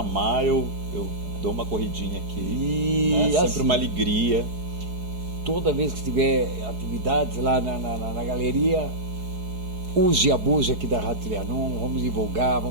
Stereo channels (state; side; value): late; left; 4.7 ms